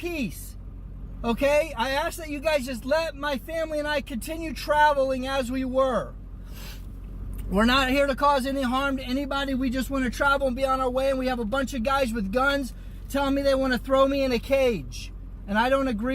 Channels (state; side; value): identical; both; correlation 1.00